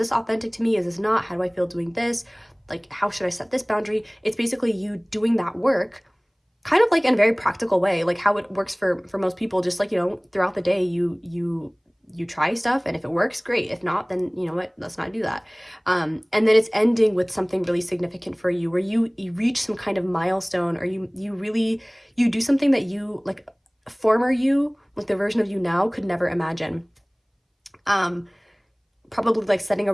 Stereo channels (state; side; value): identical; both; correlation 1.00